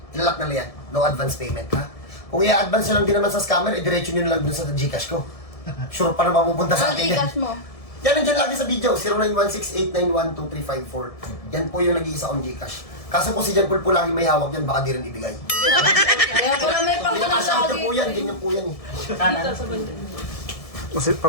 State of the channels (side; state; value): right; late; 1.7 ms